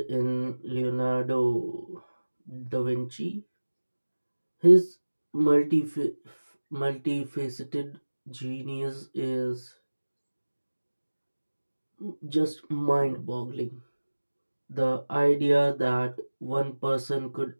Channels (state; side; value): inverted; both; correlation -1.00